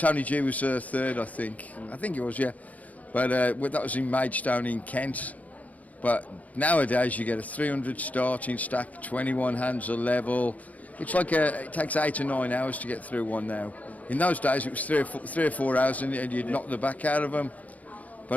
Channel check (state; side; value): late; right; 0.073 ms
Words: G was third, I think. I think it was, yeah. But that was in Maidstone in Kent. But nowadays you get a 300 starting stack, 21 hands a level. It's like it takes 8 or 9 hours to get through one now. In those days it was 3 or 4 hours and you'd knock the back out of them.